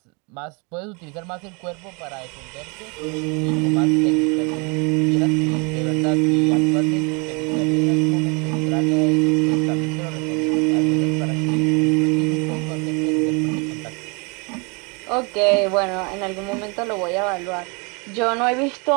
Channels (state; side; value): quieter; left; 31.7 dB